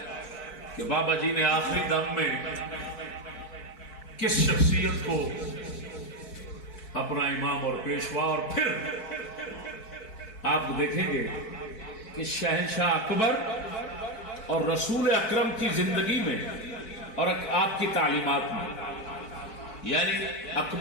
کہ بابا جی نے آخری دم میں کس شخصیت کو اپنا امام اور پیشوا، اور پھر آپ دیکھیں گے کہ شہنشاہ اکبر اور رسول اکرم کی زندگی میں اور آپ کی تعلیمات میں، یعنی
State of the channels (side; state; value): right; late; 4.6 ms